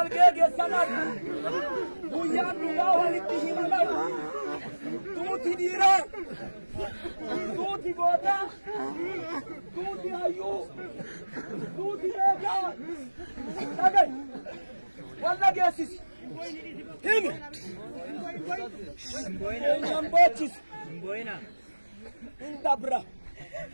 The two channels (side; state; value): both; inverted; correlation -1.00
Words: geggeessan argu. Guyyaan dhugaa walitti himamu. Tuuti dhiiraa, tuuti gootaa, tuuti hayyuu, tuuti beekaa. Dhagahi walla geessisi. Himi eenyaan boochisi. Hin dabra.